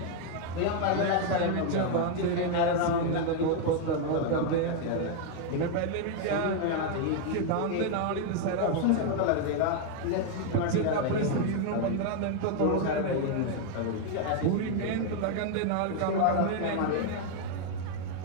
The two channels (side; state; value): both; different; correlation 0.01